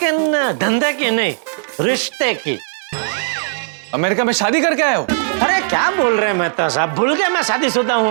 धंधे की नहीं, रिश्ते की। अमेरिका में शादी करके आए हो? अरे क्या बोल रहे हैं मेहता साहब, भूल गए मैं शादीशुदा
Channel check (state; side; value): silent; left; digital silence